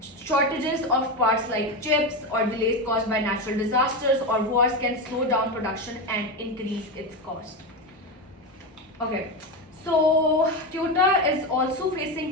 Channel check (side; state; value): both; normal; correlation 0.16